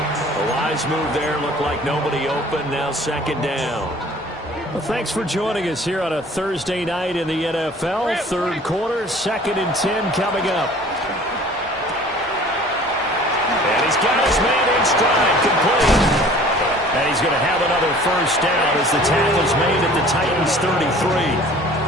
A wise move there. Looked like nobody open. Now 2nd down. Well, thanks for joining us here on a Thursday night in the NFL. 3rd quarter, 2nd and 10 coming up. And he's got his man in stride, complete. And he's going to have another first down as the tackle's made at the Titans' 33.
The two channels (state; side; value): normal; both; correlation 0.49